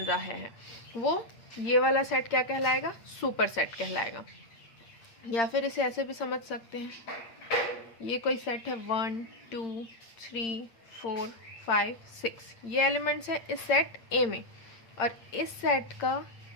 है वो ये वाला सेट क्या कहलाएगा, सुपरसेट कहलाएगा। या फिर इसे ऐसे भी समझ सकते हैं, ये कोई सेट है 1, 2, 3, 4, 5, 6, ये एलिमेंट्स है इस सेट A में, और इस सेट का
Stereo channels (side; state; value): right; late; 8.8 ms